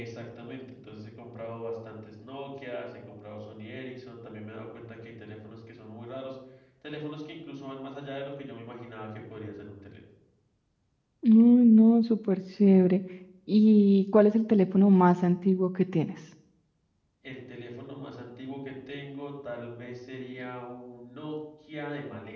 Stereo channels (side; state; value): both; identical; correlation 1.00